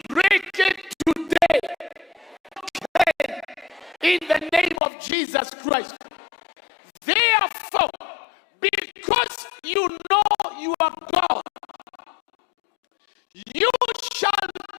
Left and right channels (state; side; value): drops out; right; at 4.8 s